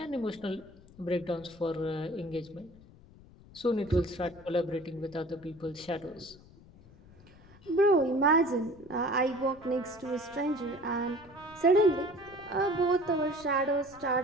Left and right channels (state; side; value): noise; left; rumble, 23 dB below the sound